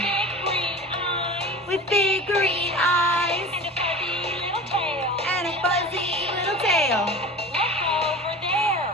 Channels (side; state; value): both; normal; correlation 0.35